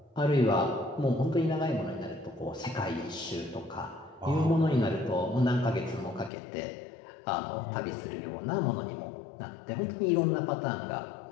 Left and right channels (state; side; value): drops out; right; at 6.3 s